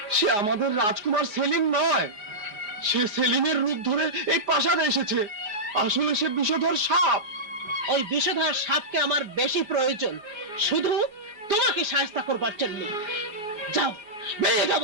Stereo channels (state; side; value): late; left; 4.9 ms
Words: সে আমাদের রাজকুমার সেলিম নয়, সে সেলিমের রূপ ধরে এই প্রাসাদে এসেছে। আসলে সে বিষধর সাপ। ওই বিষধর সাপকে আমার বেশি প্রয়োজন, শুধু তোমাকে সাহায্য করবার জন্য। যাও, বেরিয়ে যাও